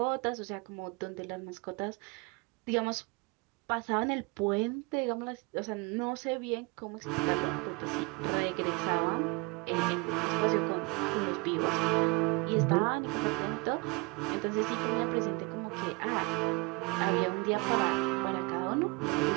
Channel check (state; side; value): quieter; left; 27.7 dB